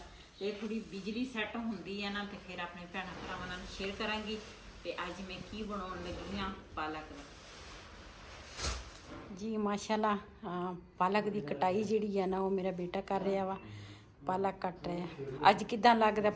तो थोड़ी बिजली सैट होंदी है ना तो फिर अपने भैणां भरावां नाल शेयर करांगी। तो अज मैं की बनाउण लगी हाँ पालक जी। माशाल्लाह पालक की कटाई जिहड़ी है ना वो मेरा बेटा कर रहा वा, पालक कट रहा। अज किदां लगदा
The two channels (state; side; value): identical; both; correlation 1.00